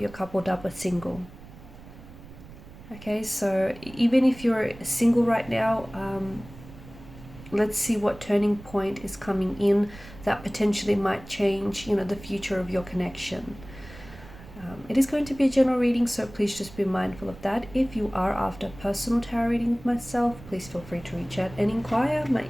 coupled up or single. Okay, so even if you're single right now, let's see what turning point is coming in that potentially might change, the future of your connection. It is going to be a general reading, so please just be mindful of that. If you are after a personal tarot reading with myself, please feel free to reach out and inquire. My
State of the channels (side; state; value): right; noise; rumble, 18 dB below the sound